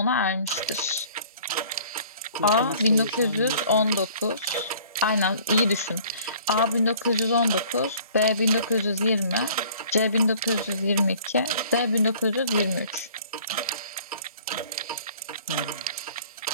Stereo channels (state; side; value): inverted; both; correlation -0.52